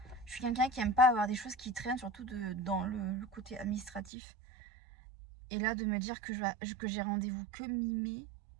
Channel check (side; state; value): left; drops out; at 4.1 s